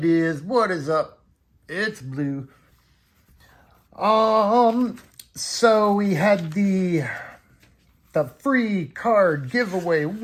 is? What is up? It's Blue. So we had the free card giveaway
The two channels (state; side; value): identical; both; correlation 1.00